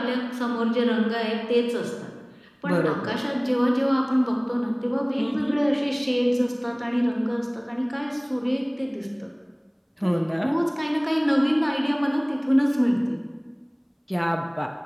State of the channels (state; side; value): identical; both; correlation 1.00